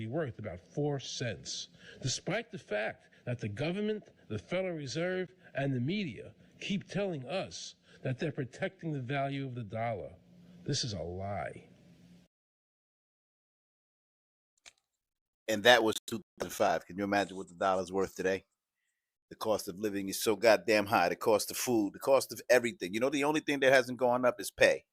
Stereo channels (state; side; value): identical; both; correlation 1.00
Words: worth about 4 cents, despite the fact that the government, the Federal Reserve, and the media keep telling us that they're protecting the value of the dollar. This is a lie. And that was 2005. Can you imagine what the dollar's worth today? The cost of living is so goddamn high. The cost of food, the cost of everything. You know, the only thing that hasn't gone up is pay,